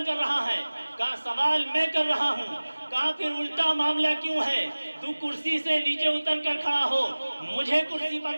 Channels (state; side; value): inverted; both; correlation -1.00